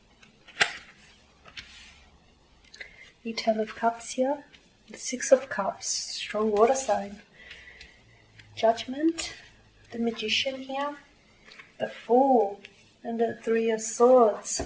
The Ten of Cups here, the Six of Cups, strong water sign, Judgment, the Magician here, the Fool, and the Three of Swords.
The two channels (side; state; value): both; identical; correlation 1.00